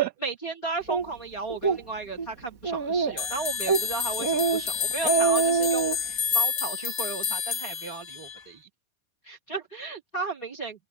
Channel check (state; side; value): late; right; 4.4 ms